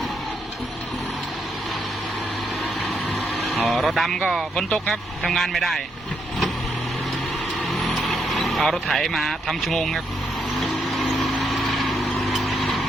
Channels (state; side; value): normal; both; correlation 0.78